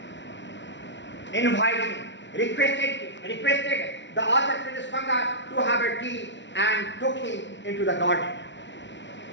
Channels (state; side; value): late; right; 0.52 ms